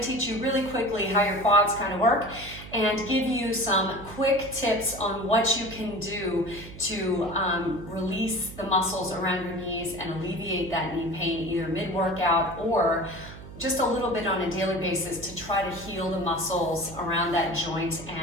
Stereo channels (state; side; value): noise; right; hum, 15 dB below the sound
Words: teach you really quickly how your quads kind of work and give you some quick tips on what you can do to release the muscles around your knees and alleviate that knee pain either mid-workout or just a little bit on a daily basis to try to heal the muscles around that joint